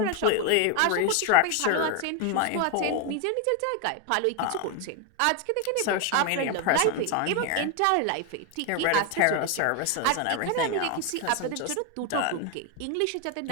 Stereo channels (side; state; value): both; different; correlation 0.01